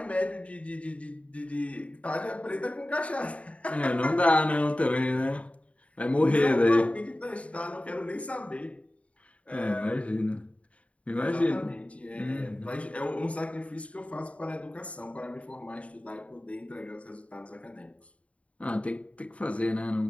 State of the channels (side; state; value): right; late; 0.064 ms